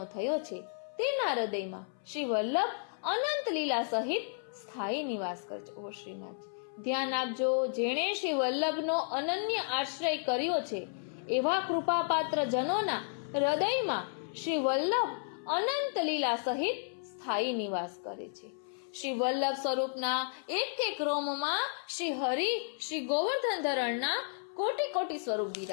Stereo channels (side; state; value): right; silent; 56 dB below the other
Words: થયો છે, તેના હૃદયમાં શ્રી વલ્લભ અનંત લીલા સહિત સ્થાયી નિવાસ કરે છે. ઓ શ્રીનાથ, ધ્યાન આપજો, જેણે શ્રી વલ્લભનો અનન્ય આશ્રય કર્યો છે એવા કૃપાપાત્ર જનોના હૃદયમાં શ્રી વલ્લભ અનંત લીલા સહિત સ્થાયી નિવાસ કરે છે. શ્રી વલ્લભ સ્વરૂપના એક એક રોમમાં શ્રી હરિ શ્રી ગોવર્ધન ધરણના કોટી કોટી સ્વરૂપ